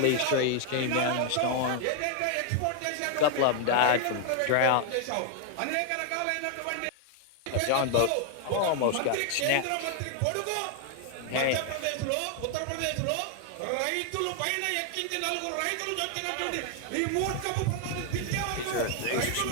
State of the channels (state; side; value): different; both; correlation 0.00